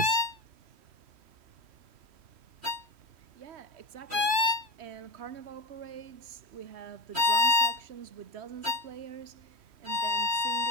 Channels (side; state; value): left; late; 3.1 ms